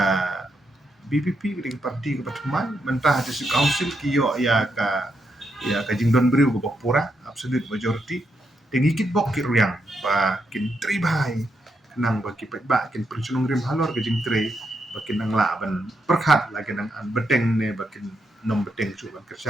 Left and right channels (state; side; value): normal; both; correlation 0.81